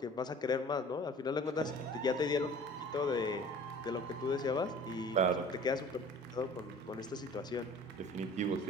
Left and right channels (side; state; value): both; normal; correlation 0.45